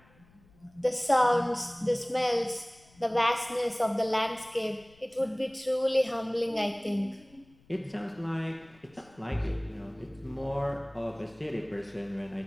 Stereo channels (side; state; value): left; noise; rumble, 29 dB below the sound